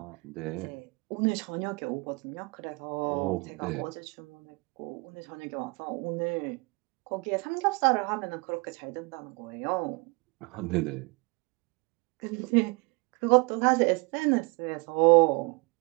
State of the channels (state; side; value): quieter; left; 28.3 dB